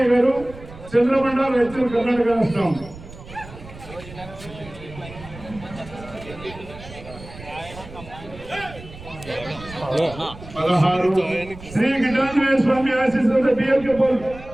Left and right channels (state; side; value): noise; right; rumble, 16 dB below the sound